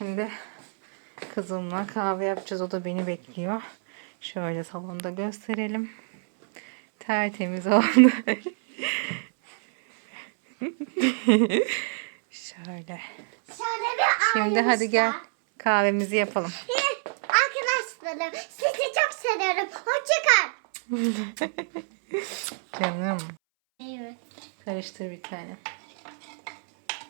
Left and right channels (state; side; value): silent; left; 60 dB below the other